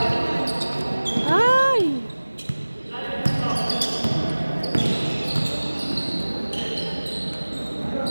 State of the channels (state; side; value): inverted; both; correlation -1.00